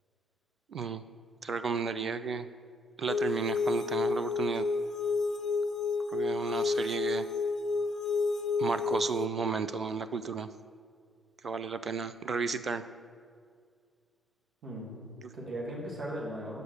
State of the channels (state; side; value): normal; both; correlation 0.69